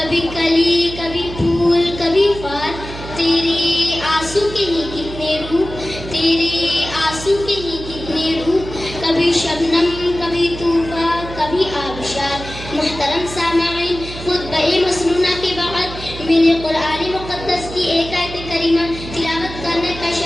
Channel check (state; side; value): noise; right; hum, 11 dB below the sound